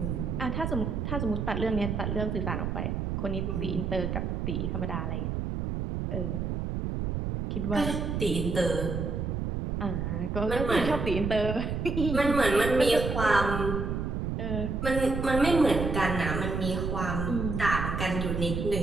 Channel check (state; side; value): noise; right; rumble, 2 dB below the sound